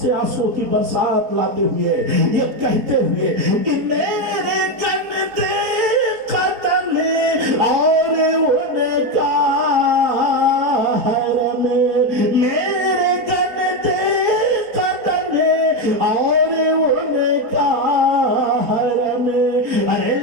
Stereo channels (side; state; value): left; late; 4.2 ms